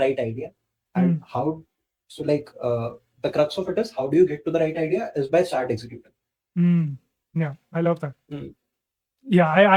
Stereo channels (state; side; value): identical; both; correlation 1.00